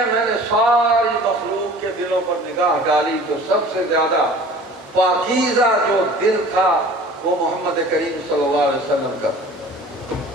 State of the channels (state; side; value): normal; both; correlation 0.45